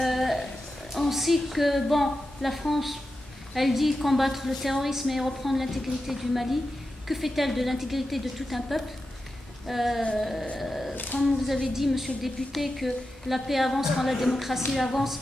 On sait que, bon, la France, elle dit combattre le terrorisme et reprendre l'intégrité du Mali. Que fait-elle de l'intégrité de tout un peuple? Comme vous avez dit, monsieur le député, que la paix avance quand la démocratie avance,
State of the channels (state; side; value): normal; both; correlation 0.91